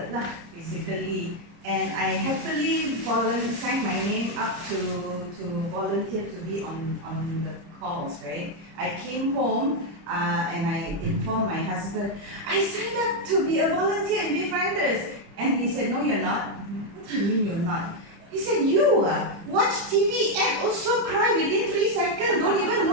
lah, basically. And I happily signed my name up to volunteer to be on the calls, right? I came home and I informed my husband, I signed up to be a volunteer in Befrienders. And he said, no, you're not. What do you mean you're not? He said, you watch TV and also cry within 3 seconds, don't even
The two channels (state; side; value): late; left; 29 ms